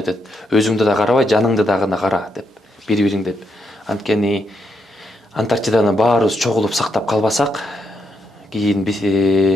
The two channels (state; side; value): normal; both; correlation 0.80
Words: Өзүңдү да карабай, жаныңды да гана кара деп, бири-бириң деп. Анткени Антарктиданы баарыбыз чогулуп сактап калбасак, кийин